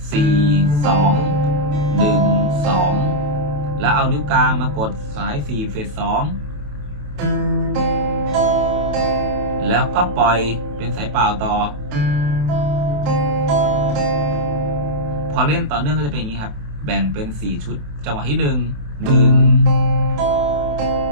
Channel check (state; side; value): late; left; 28 ms